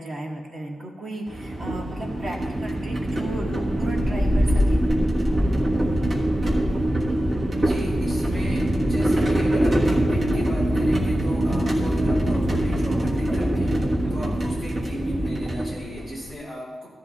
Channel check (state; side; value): normal; both; correlation 0.94